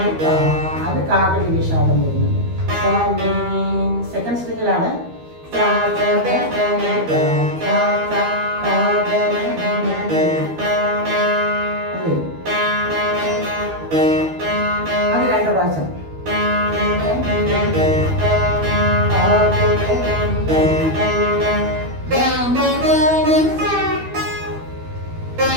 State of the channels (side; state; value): left; late; 12 ms